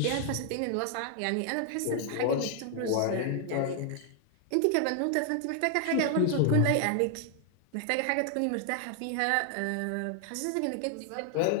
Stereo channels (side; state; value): both; different; correlation 0.00